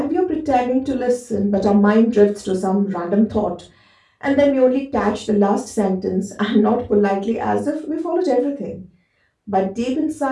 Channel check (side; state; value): both; identical; correlation 1.00